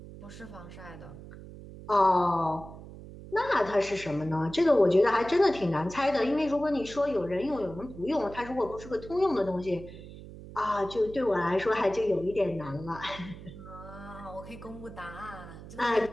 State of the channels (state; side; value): noise; right; hum, 15 dB below the sound